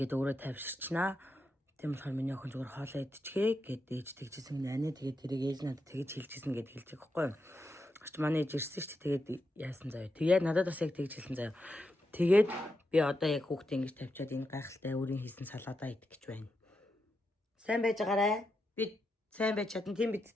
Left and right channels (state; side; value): normal; both; correlation 0.85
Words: өөрөө тавьширчнаа. Тийм болохоор миний охин зүгээр хоолой идчихээ гэд ээж тэгжсэн гинэ. Анаа тэгээд тэрийг ээж надад тэгж хэлжсэн гэд хэлж байгаа байхгүй юу? Очт манай ээж ирсэн ч тэгээд яасан заяа. Тэгээд надад бас яг тэгж хэлсэн заяа. Тэгээд би одоо яг хүүхдээ ингэж тавьчаад энэ гайхалтай өөрийн хийсэн салаадаа идэх гэж байна. Сайн байж байгаарай. Би сайн байж чадна тийм